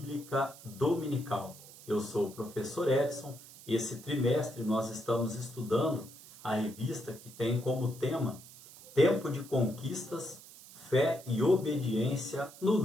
Dominical. Eu sou o professor Edson e esse trimestre nós estamos estudando a revista que tem como tema Tempo de Conquistas, Fé e Obediência no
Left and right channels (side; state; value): right; noise; hiss, 19 dB below the sound